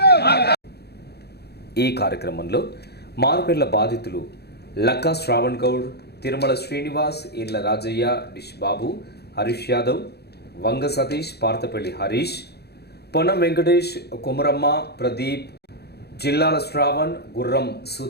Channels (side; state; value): right; late; 0.47 ms